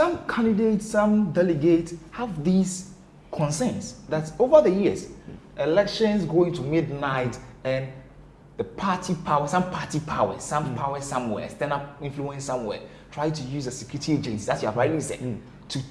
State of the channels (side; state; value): both; identical; correlation 1.00